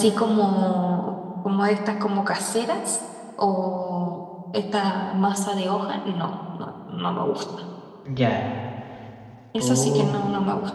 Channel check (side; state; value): both; identical; correlation 1.00